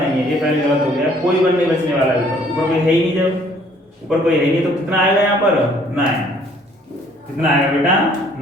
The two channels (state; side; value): normal; both; correlation 0.60